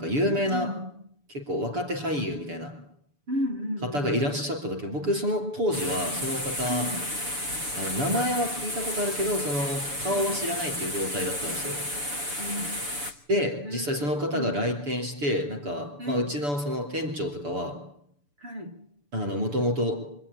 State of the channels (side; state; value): left; late; 6.9 ms